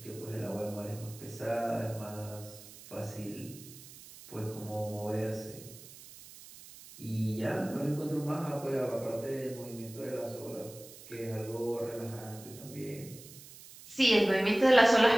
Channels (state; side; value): noise; right; hiss, 18 dB below the sound